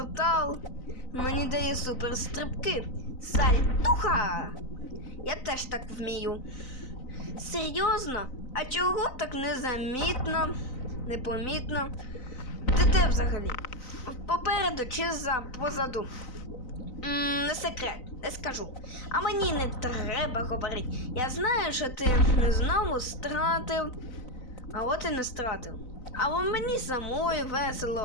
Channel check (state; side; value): late; right; 4.0 ms